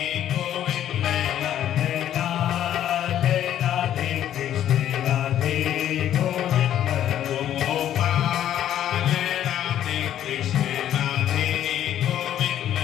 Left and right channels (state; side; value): quieter; right; 11.2 dB